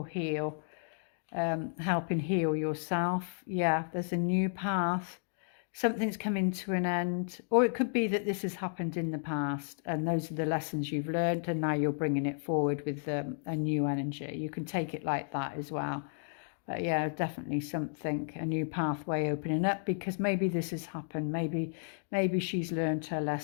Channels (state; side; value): silent; right; digital silence